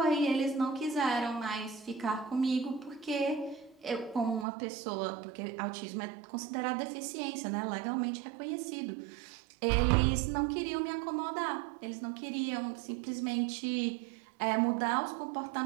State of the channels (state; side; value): drops out; left; at 4.5 s